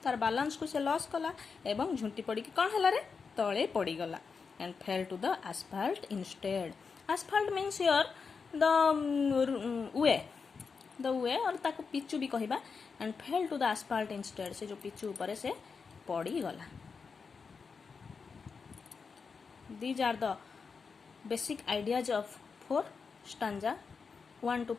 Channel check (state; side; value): quieter; right; 5.3 dB